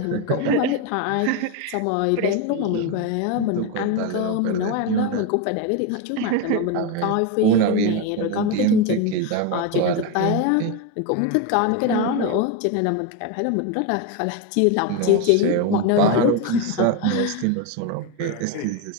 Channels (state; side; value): different; both; correlation 0.03